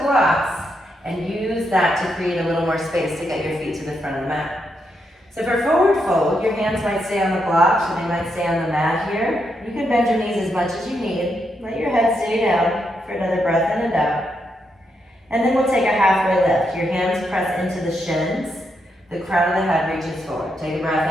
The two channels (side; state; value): both; normal; correlation 0.81